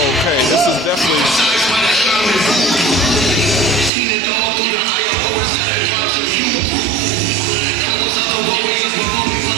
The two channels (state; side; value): drops out; left; at 3.9 s